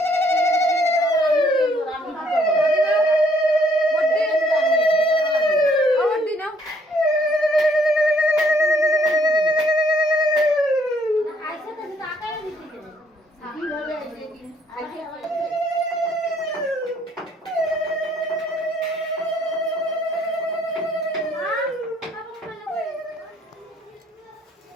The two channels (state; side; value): normal; both; correlation 0.65